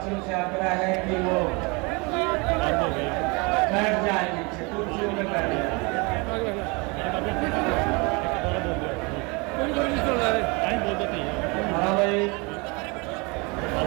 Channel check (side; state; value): left; quieter; 28.5 dB